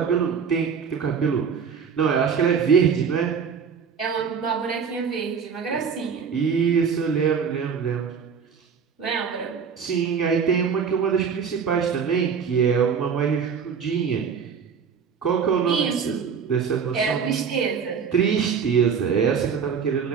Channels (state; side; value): quieter; left; 6.5 dB